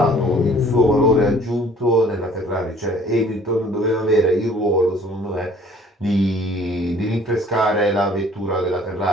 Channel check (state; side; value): normal; both; correlation 0.54